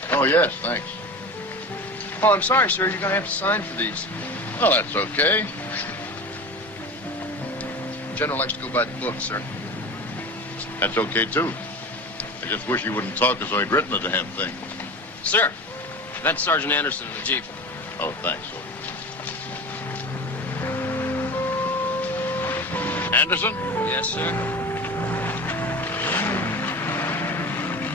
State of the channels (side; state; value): both; normal; correlation 0.32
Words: Oh, yes, thanks. Oh, I'm sorry, sir. You're going to have to sign for these. Oh, that's okay. General likes to go by the book, sir. That's okay, too. I just wish he wouldn't talk as though he'd written the damn thing. Sir, that's Sergeant Anderson in the Jeep. Oh, thanks. Anderson? Yes, sir.